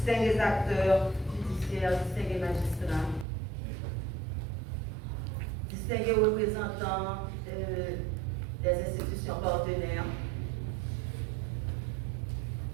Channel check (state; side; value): drops out; left; at 3.2 s